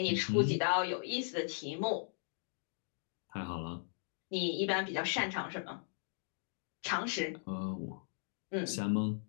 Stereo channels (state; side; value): silent; right; digital silence